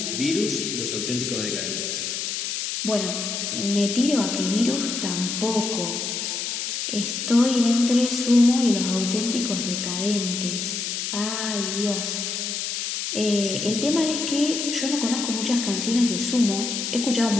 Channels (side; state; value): left; noise; hiss, 3 dB below the sound